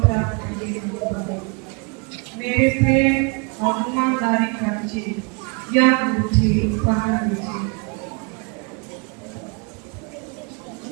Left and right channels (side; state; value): left; quieter; 33.2 dB